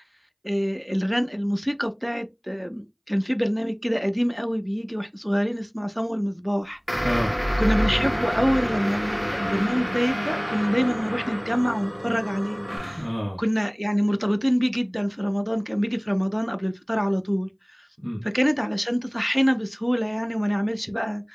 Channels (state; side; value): identical; both; correlation 1.00